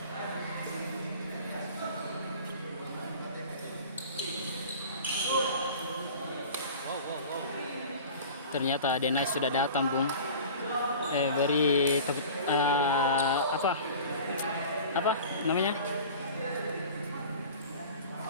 Ternyata Denai sudah datang, Bung. Beri apa namanya?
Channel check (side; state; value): both; inverted; correlation -0.39